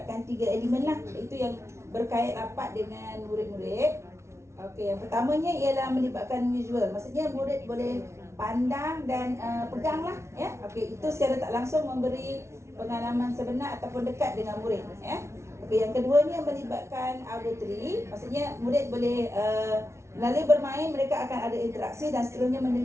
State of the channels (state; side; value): late; left; 0.13 ms